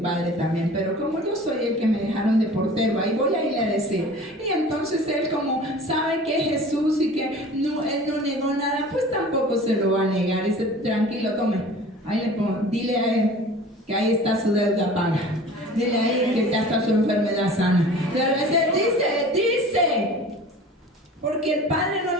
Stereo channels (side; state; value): both; normal; correlation 0.42